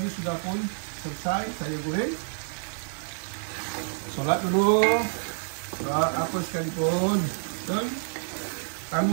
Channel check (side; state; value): left; silent; digital silence